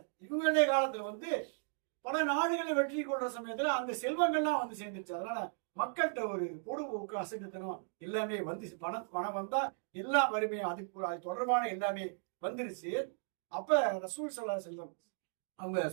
இவங்களுடைய காலத்துல வந்து பல நாடுகளை வெற்றி கொள்ற சமயத்துல அந்த செல்வங்கள்லாம் வந்து சேர்ந்துருச்சு. அதனால மக்கள்கிட்ட ஒரு பொடுபோக்கு அசைத்தனம் எல்லாமே வந்து பணம் வந்தா எல்லா வறுமையும் அது தொடர்பான எல்லாமே வந்துருச்சு. அப்ப ரசூல் ஸல்லல்லாஹு அலைஹி வஸல்லம் அவங்க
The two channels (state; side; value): silent; left; digital silence